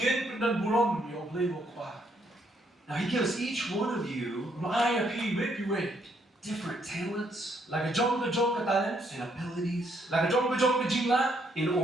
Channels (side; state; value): both; normal; correlation 0.72